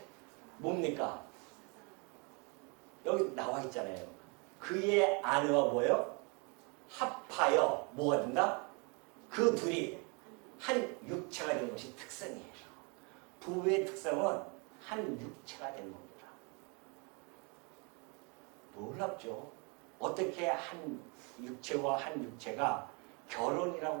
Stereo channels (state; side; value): quieter; left; 32.9 dB